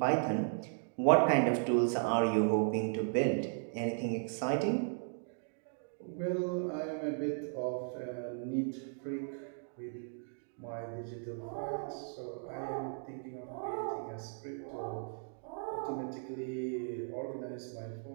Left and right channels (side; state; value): left; silent; digital silence